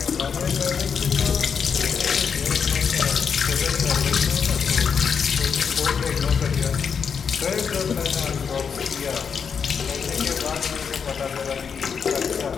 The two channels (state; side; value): quieter; right; 6.5 dB